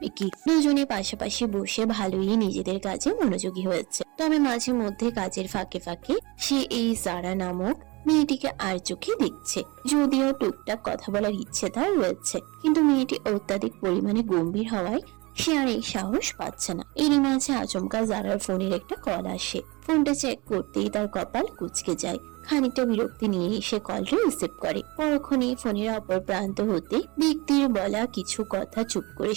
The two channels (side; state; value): left; quieter; 25.0 dB